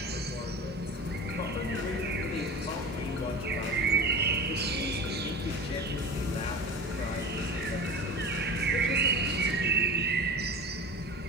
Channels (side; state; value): both; normal; correlation 0.34